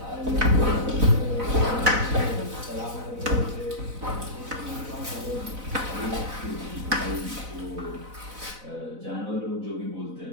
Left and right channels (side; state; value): left; late; 4.0 ms